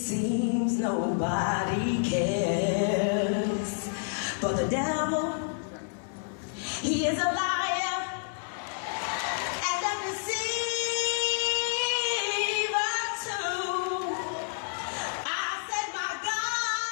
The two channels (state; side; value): silent; right; 58 dB below the other